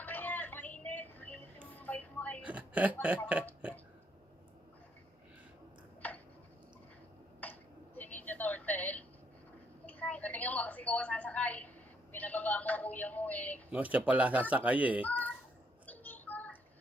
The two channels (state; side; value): normal; both; correlation 0.71